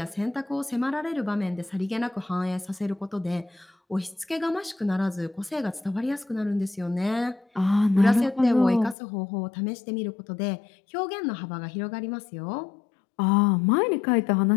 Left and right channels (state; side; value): drops out; right; at 9.0 s